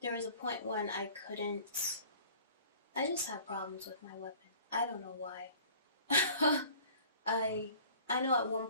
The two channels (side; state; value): both; inverted; correlation -0.49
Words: There was a point when I just had problems with my weapon. I don't know why. I know at one